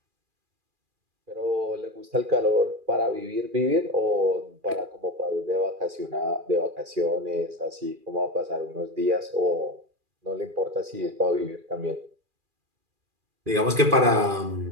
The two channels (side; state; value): left; late; 2.4 ms